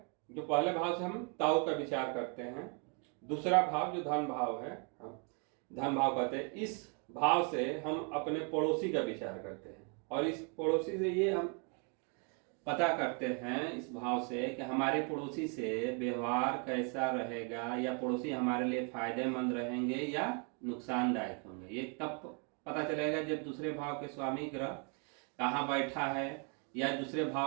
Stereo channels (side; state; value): left; quieter; 37.5 dB